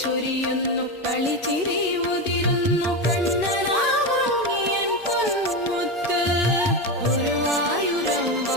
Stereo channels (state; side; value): normal; both; correlation 0.15